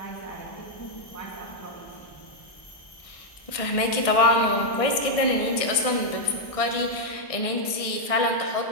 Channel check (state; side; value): late; right; 1.6 ms